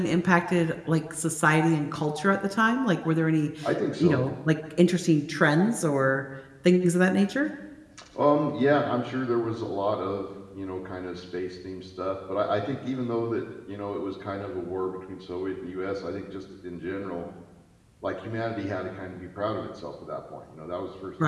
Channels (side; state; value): both; identical; correlation 1.00